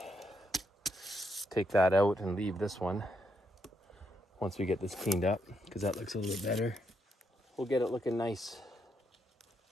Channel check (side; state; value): both; normal; correlation 0.78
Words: take that out and leave this one once we get this cleaned up, because that looks a little bit better. We'll get it looking nice.